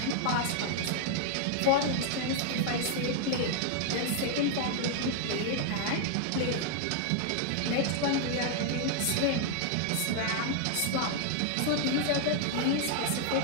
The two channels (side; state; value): both; different; correlation 0.00